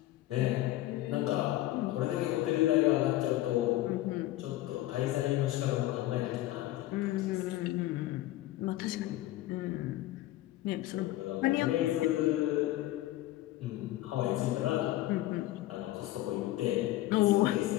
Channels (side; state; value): right; quieter; 15.7 dB